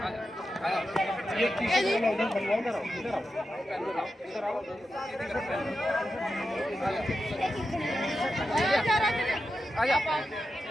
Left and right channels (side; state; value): both; normal; correlation 0.90